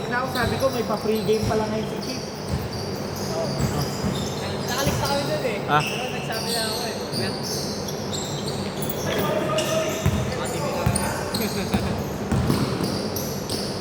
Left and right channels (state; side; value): identical; both; correlation 1.00